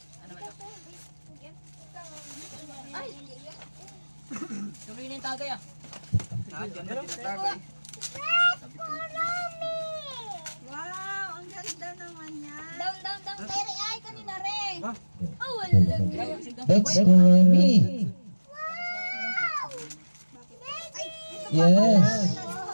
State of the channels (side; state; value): both; inverted; correlation -1.00